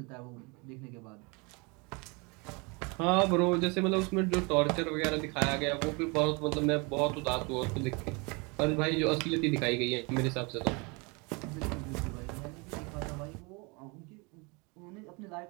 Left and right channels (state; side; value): quieter; left; 29.5 dB